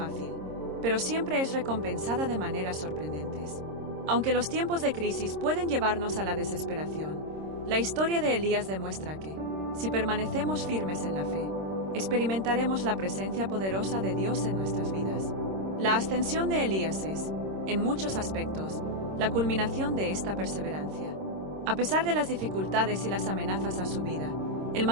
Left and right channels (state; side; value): late; left; 26 ms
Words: pero siempre es recompensada de maneras sorprendentes. Aunque los tiempos de crisis pueden llevarnos a la desesperación, la historia de Elías demuestra que, si permanecemos firmes en la fe, experimentaremos la presencia poderosa de Dios en nuestras vidas. La ascensión de Elías es, en muchos aspectos, la culminación de esta perseverancia. A pesar de las dificultades y las amenazas a su vida, él